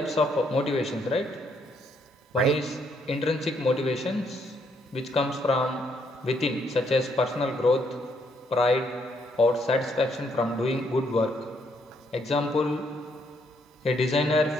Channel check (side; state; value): both; normal; correlation 0.72